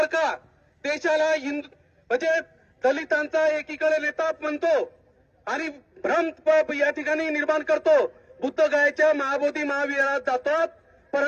देशाला म्हणजे दलितांचा एकीकडे नेता म्हणतो आणि भ्रम या ठिकाणी निर्माण करतो. बुद्धगयाच्या महाबोधी महाविहारात जातात,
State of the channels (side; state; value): both; identical; correlation 1.00